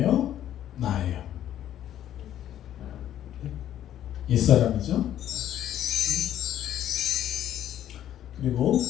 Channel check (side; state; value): right; quieter; 11.4 dB